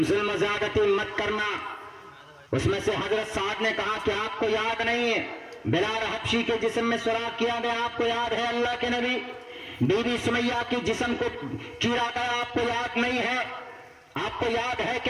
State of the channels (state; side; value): identical; both; correlation 1.00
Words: ظلم و زیادتی مت کرنا۔ اس میں سے حضرت سعد نے کہا کہ آپ کو یاد نہیں ہے بلال حبشی کے جسم میں سوراخ کیا گیا، آپ کو یاد ہے اللہ کے نبی؟ بی بی سمیہ کے جسم کو چیرا گیا، آپ کو یاد نہیں ہے؟ آپ کو یاد ہے